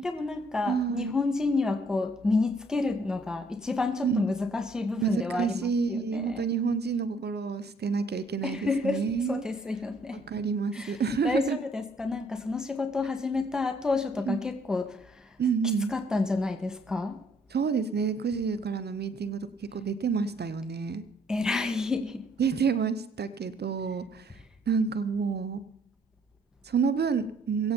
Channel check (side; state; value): both; normal; correlation 0.64